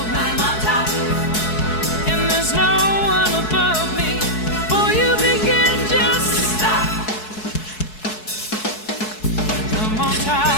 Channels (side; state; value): right; late; 4.7 ms